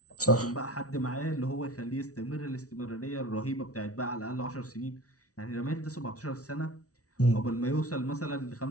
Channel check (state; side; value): late; right; 0.67 ms